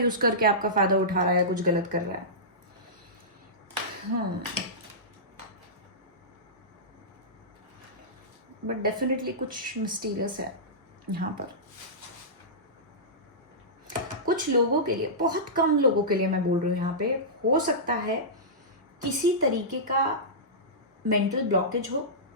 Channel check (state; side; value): normal; both; correlation -0.17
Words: करके आपका फायदा उठा रहा है, कुछ गलत कर रहा है। बट डेफिनेटली कुछ मिस्टीरियस है यहाँ पर। कुछ लोगों के लिए, बहुत कम लोगों के लिए मैं बोल रही हूँ यहाँ पे, हो सकता है किसी तरीके का मेंटल ब्लॉकेज हो